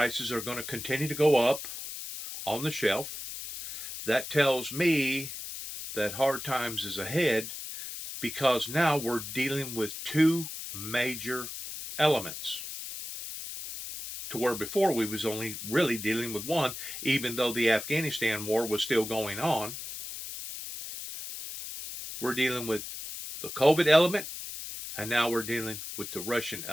are going to continue to go up on the shelf. That tells me that hard times is ahead, because now we're dealing with two major elements, to where before we was only really dealing with one, even though the Afghanistan war was still going on. We're dealing with the COVID element, and now we're dealing with the Russian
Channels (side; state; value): left; noise; hiss, 8 dB below the sound